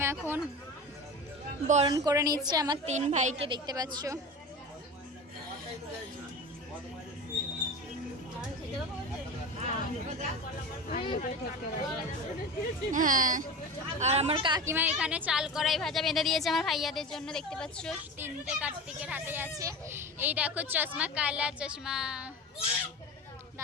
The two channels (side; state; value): both; normal; correlation 0.29